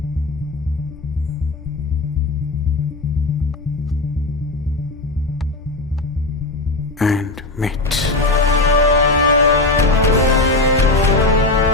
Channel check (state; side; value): quieter; right; 3.1 dB